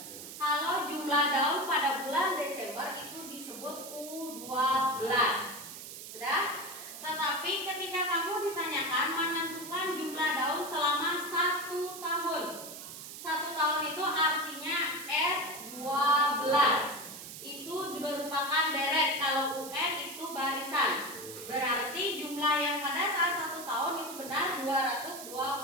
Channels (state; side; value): noise; right; hiss, 11 dB below the sound